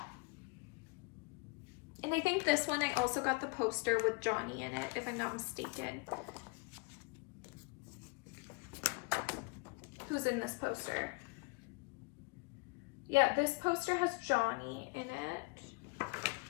And I think this one, I also got the poster with Johnny in it, if I'm not mistaken. Who's in this poster? Yeah, this poster has Johnny in it.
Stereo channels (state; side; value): quieter; right; 29.3 dB